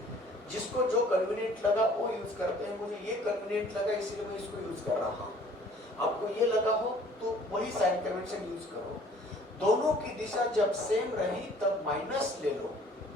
जिसको जो कन्वीनियंट लगा वो यूज करते हैं। मुझे ये कन्वीनियंट लगा इसलिए मैं इसको यूज कर रहा हूँ। आपको ये लगा हो तो वही साइन कन्वेंशन यूज करो। दोनों की दिशा जब सेम रही तब माइनस ले लो,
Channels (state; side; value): normal; both; correlation 0.54